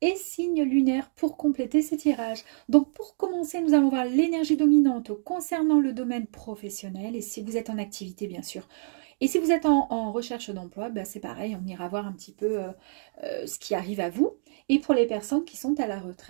signe lunaire pour compléter ce tirage. Donc pour commencer, nous allons voir l'énergie dominante concernant le domaine professionnel et si vous êtes en activité bien sûr. Et si vous êtes en recherche d'emploi, ben c'est pareil, on ira voir un petit peu ce qui arrive à vous. Et pour les personnes qui sont à la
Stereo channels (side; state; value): left; silent; digital silence